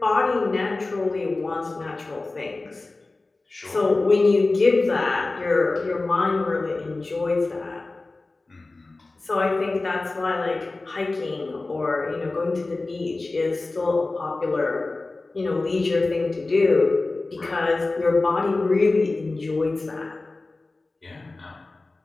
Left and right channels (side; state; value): right; quieter; 3.3 dB